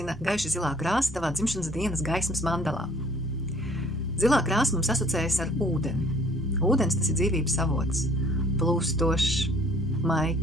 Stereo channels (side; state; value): both; normal; correlation 0.56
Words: gaiši zilā krāsa tavā dzimšanas dienas gaismas mandalā? Zilā krāsa mums asociējas ar ūdeni. Ūdens tas ir dzīvības avots, plūstošs,